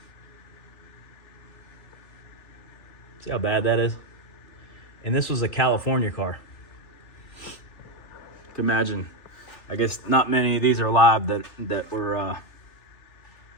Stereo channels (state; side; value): late; right; 3.4 ms